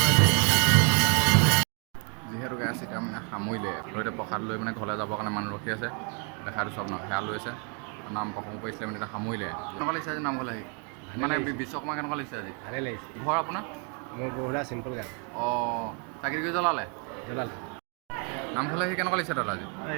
যিহেতু গেছ এতিয়া মানে সামৰিলে এতিয়া প্ৰসাদ লৈ মানে ঘৰলৈ যাবৰ কাৰণে মানুহ ৰখি আছে দেখা দিছোঁ আপোনাক সেয়া লৈ আছে নাম প্ৰসংগ কৰিছিলে মানে এতিয়া সামৰিলে কেনেকুৱা লাগিছে আজি নামঘৰলৈ আহি মানে বিশ্বকৰ্মা কেনেকুৱা লাগিছে আজি ভালে লাগিছে ঘৰ আপোনাৰ মোৰ বহুতা চিম্পল গান অঁ চাকি জ্বলালে নামঘৰলৈ আহি কেনেকুৱা লাগিছে দাদা আজি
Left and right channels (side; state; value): left; quieter; 38.0 dB